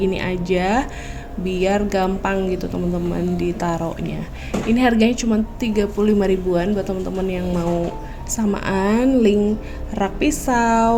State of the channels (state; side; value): identical; both; correlation 1.00